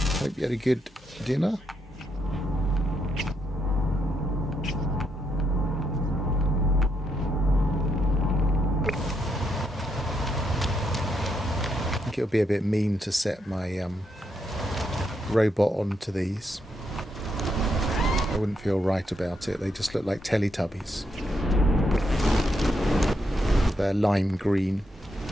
Hope you had a good dinner. I think it would be a bit mean to set my robot onto these. I wouldn't feel right about it. They just look like Teletubbies. They're lime green.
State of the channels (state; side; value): normal; both; correlation 0.79